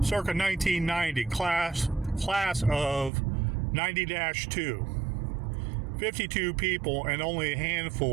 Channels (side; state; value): left; drops out; at 3.1 s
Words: circa 1990, class of 90-2. 52 people, and only a